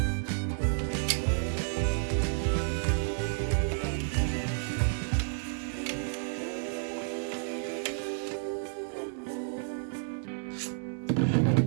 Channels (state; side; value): silent; left; digital silence